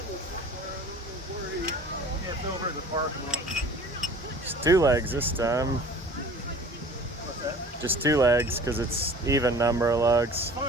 Yeah, it's over in the parking lot. Just 2 legs this time. What's that? Just 2 legs, because it's even number of lugs.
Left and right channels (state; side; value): normal; both; correlation 0.45